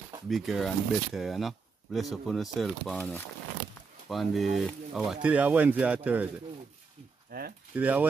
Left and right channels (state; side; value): quieter; left; 4.8 dB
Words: bigger and better, you know. Bless up on yourself on the, today is Wednesday or Thursday? Today is